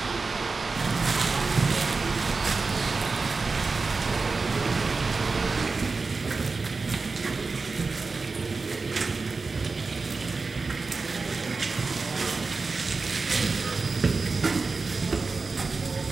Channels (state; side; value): quieter; left; 4.1 dB